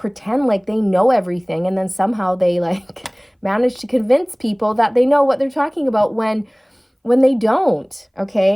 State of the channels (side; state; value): both; identical; correlation 1.00